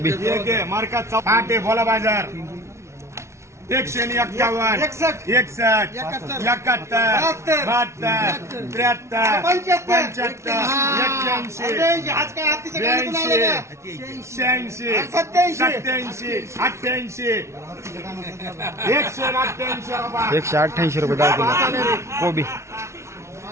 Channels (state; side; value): late; left; 0.13 ms